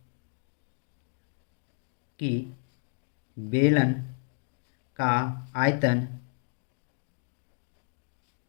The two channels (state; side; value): silent; right; 56 dB below the other